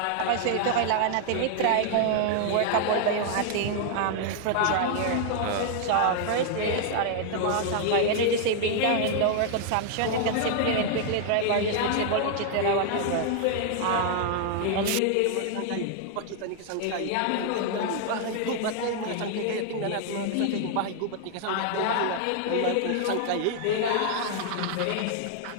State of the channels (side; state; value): both; different; correlation 0.00